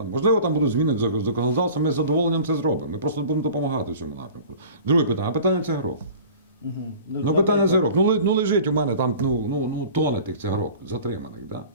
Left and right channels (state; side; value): inverted; both; correlation -0.43